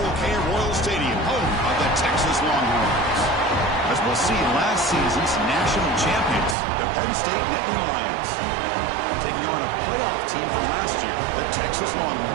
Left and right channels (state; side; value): drops out; left; at 6.6 s